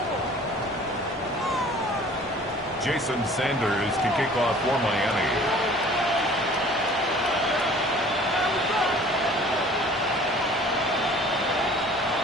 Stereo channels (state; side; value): normal; both; correlation 0.49